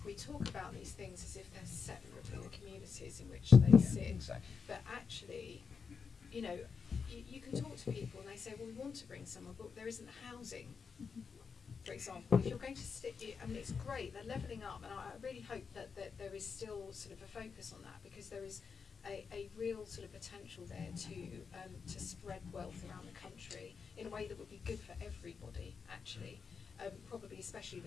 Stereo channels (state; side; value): quieter; right; 5.7 dB